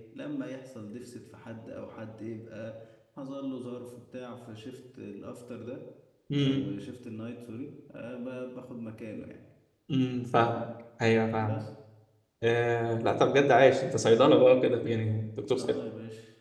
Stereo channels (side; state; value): both; identical; correlation 1.00